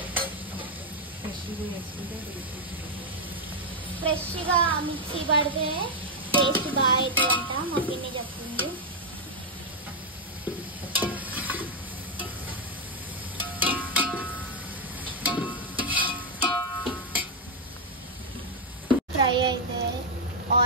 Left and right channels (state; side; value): normal; both; correlation 0.00